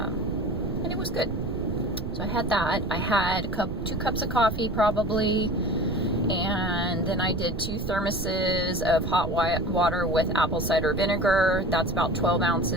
it was good. So I had that. I had 2 cups of coffee probably, and then I did 2 thermoses of hot water with apple cider vinegar. That's about 12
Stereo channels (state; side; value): noise; right; rumble, 6 dB below the sound